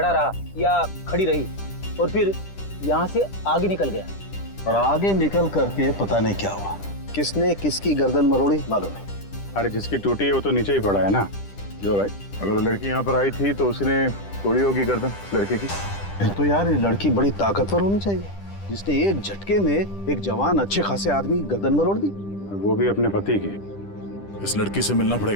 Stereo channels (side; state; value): right; late; 10 ms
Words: रहा या खड़ी रही और फिर यहाँ से आगे निकल गया। और आगे निकल करके पता नहीं क्या हुआ, किसने किसकी गर्दन मरोड़ी मालूम नहीं। अरे जिसकी टूटी है वो तो नीचे ही पड़ा है ना। जो राइट, अगर वो लड़की यहाँ पर आई थी तो उसने तोड़ी होगी गर्दन लड़के की। फिर तो यार ये लड़की बड़ी ताकतवर होनी चाहिए, जिसने एक झटके में एक जवान अच्छे खासे आदमी गर्दन मरोड़ दी। और वो भी अपने पति की। इस लड़की से मिलना